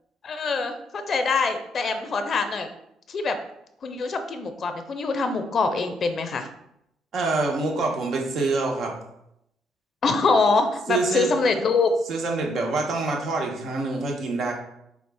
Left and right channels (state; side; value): normal; both; correlation 0.73